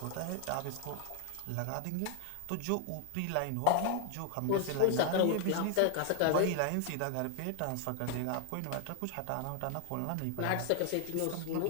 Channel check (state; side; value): different; both; correlation 0.00